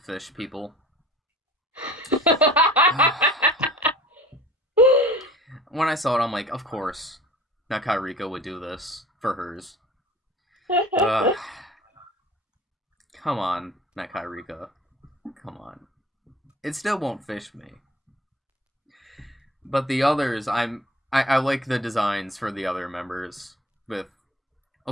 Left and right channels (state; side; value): normal; both; correlation 0.45